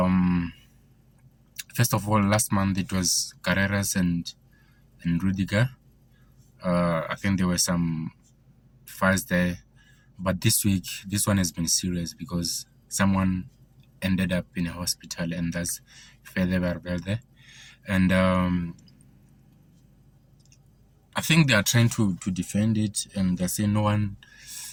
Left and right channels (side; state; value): both; identical; correlation 1.00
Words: First of all, last month it was Carreras and Rudiger. I think there were some fights there, but this week this one has been serious because someone ended up in a hospital, and that's Fede Valverde. And I think they are trying to defend it, and they say no one,